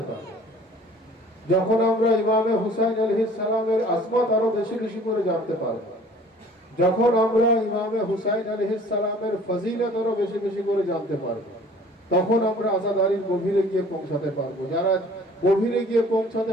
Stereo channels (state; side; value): normal; both; correlation 0.51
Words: পারবো, যখন আমরা ইমামে হুসাইন আলাইহিস সালামের আজমত আরো বেশি বেশি করে জানতে পারবো, যখন আমরা ইমামে হুসাইন আলাইহিস সালামের ফজিলত আরো বেশি বেশি করে জানতে পারবো, তখন আমরা আজাদারির গভীরে গিয়ে পৌঁছাতে পারবো। যারা গভীরে গিয়ে পৌঁছাতে